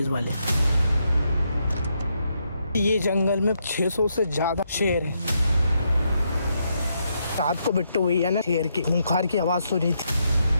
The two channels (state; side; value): inverted; both; correlation -0.79